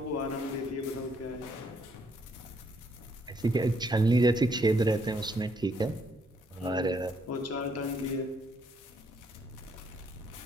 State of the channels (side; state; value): both; normal; correlation 0.71